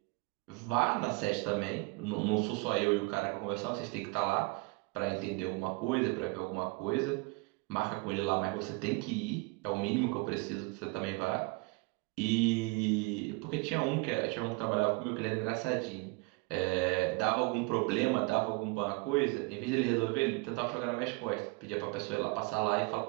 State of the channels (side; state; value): left; quieter; 26.3 dB